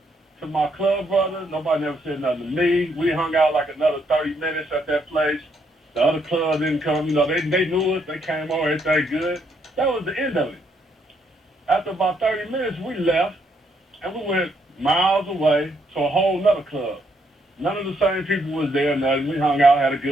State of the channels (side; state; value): both; normal; correlation 0.74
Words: to my club brother. Nobody never said nothing to me. We hung out like another 30 minutes at that place. The other club didn't come. You know, they knew us. They came over. Everything good. That was the end of it. After about 30 minutes, we left, and we went miles away to a whole nother club. None of the same people was there. Nothing. We hung out, had a